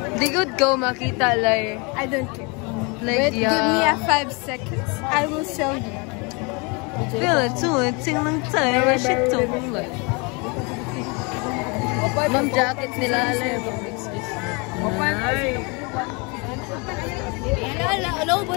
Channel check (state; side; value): quieter; right; 30.4 dB